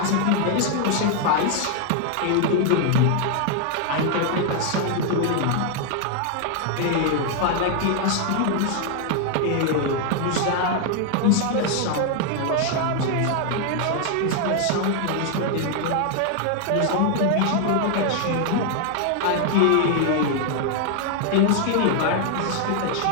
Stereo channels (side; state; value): both; different; correlation 0.00